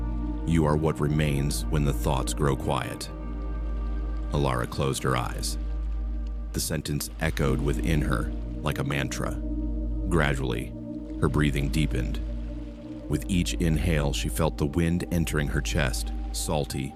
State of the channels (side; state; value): both; identical; correlation 1.00